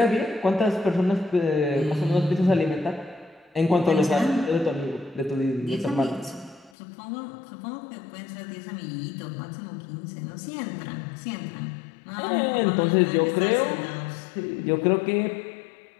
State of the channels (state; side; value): drops out; right; at 6.7 s